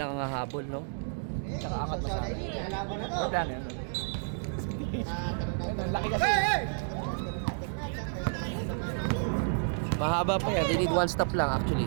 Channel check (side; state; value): left; silent; digital silence